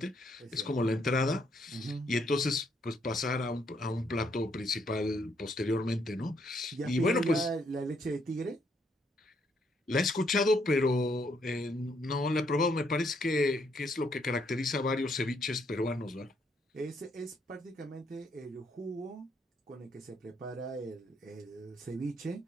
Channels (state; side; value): normal; both; correlation 0.72